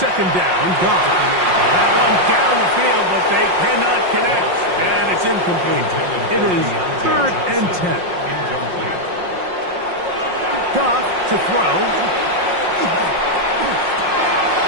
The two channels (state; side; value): late; left; 5.5 ms